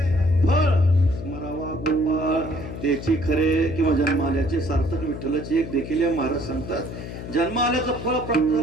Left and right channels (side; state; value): left; noise; hum, 9 dB below the sound